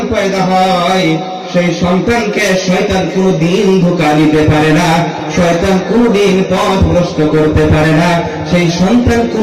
পয়দা হয়, সেই সন্তানকে শয়তান কোনদিন ধোঁকা দিতে পারে না, শয়তান কোনদিন পথ ভ্রষ্ট করতে পারে না, সেই সন্তান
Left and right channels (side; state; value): both; identical; correlation 1.00